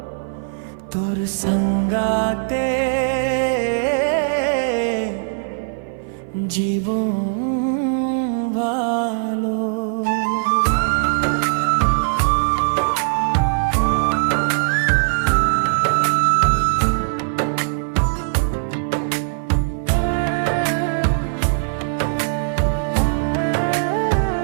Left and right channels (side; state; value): left; silent; 57 dB below the other